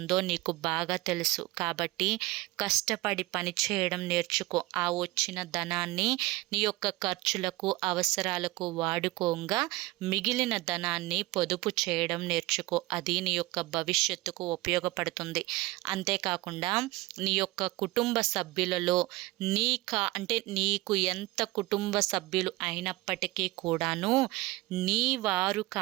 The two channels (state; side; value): quieter; left; 20.1 dB